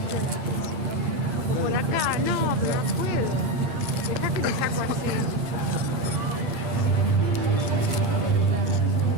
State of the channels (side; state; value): left; late; 9.0 ms